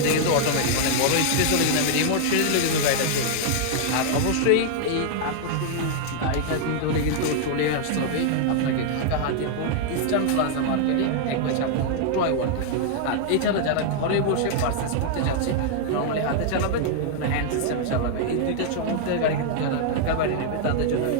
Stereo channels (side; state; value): both; different; correlation -0.01